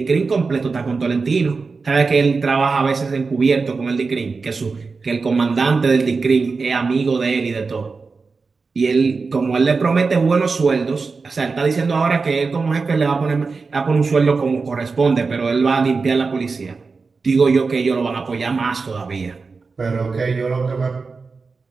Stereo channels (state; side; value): quieter; left; 4.5 dB